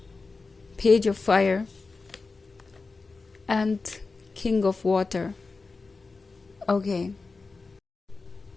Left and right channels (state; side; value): quieter; right; 4.0 dB